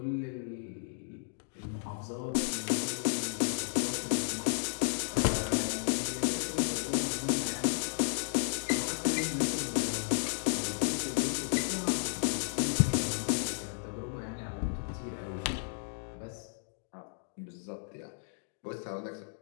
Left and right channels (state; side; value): silent; right; digital silence